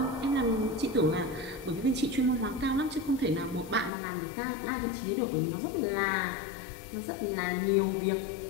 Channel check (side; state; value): right; drops out; at 3.9 s